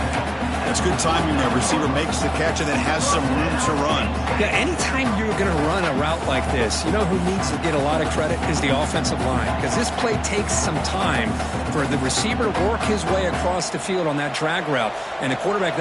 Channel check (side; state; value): both; identical; correlation 1.00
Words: It's good timing. The receiver makes the catch and then has some room to run. Yeah, anytime you're going to run a route like this, you know who needs to get a lot of credit is the offensive line, because this play takes some time for the receiver to work his way across the field on that drag route, and the quarterback